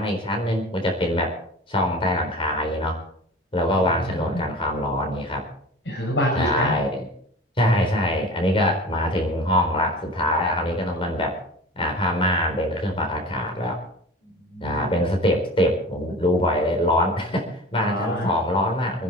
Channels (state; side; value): normal; both; correlation 0.37